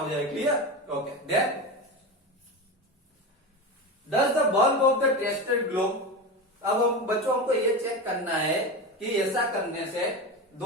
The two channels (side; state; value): both; normal; correlation 0.22